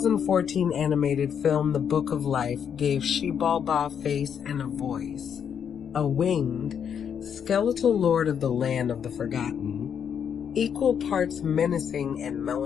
animated film The Book of Life gave Xilbalba a face and a voice, a winged, skeletal lord of the land of the forgotten, equal parts menacing and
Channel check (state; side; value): quieter; right; 7.9 dB